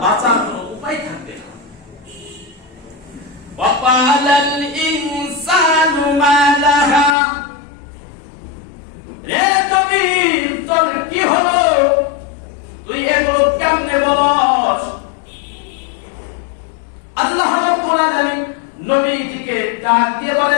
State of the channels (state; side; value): drops out; right; at 7.2 s